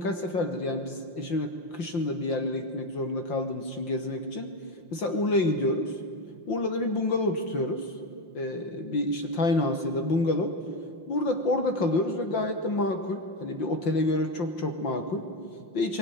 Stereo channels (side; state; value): right; late; 5.8 ms